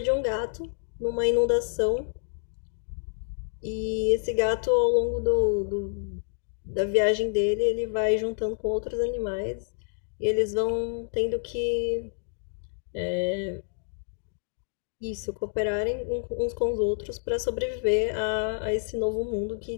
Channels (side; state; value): right; silent; digital silence